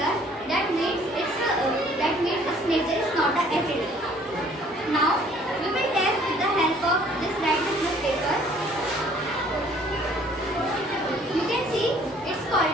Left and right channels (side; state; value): both; normal; correlation 0.58